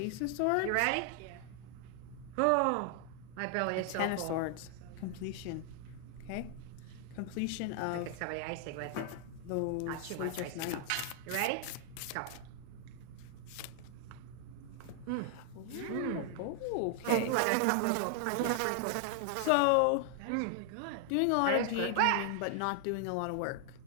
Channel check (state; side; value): different; both; correlation 0.00